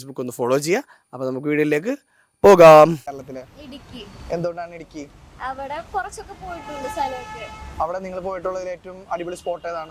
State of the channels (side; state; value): both; identical; correlation 1.00